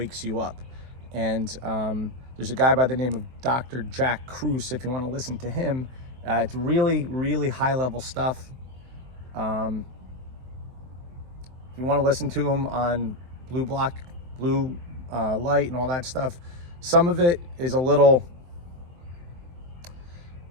you up. And there's a guy by the name of Dr. Jack Kruse, if you want to listen to him. It's really, really high-level stuff. If you want to listen to him on blue light and all that stuff, some of it is a little...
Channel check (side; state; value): left; late; 23 ms